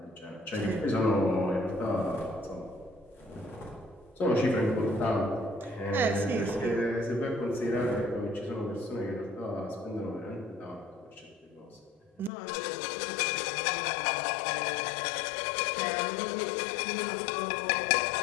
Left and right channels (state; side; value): drops out; right; at 12.3 s